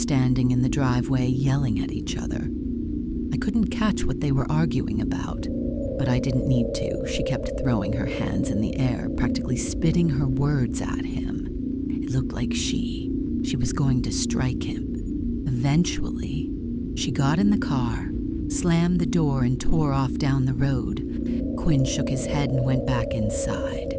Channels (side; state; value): both; identical; correlation 1.00